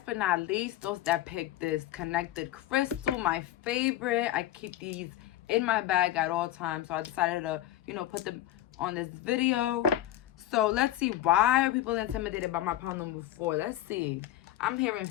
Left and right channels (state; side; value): quieter; right; 13.5 dB